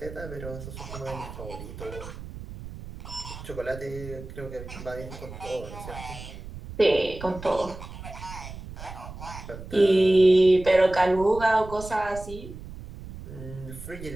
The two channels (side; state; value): right; noise; rumble, 12 dB below the sound